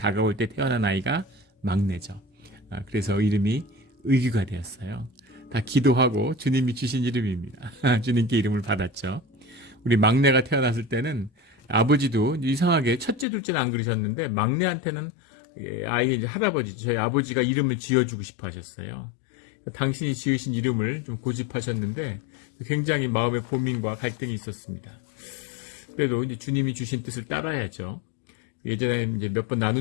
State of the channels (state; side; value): drops out; right; at 13.2 s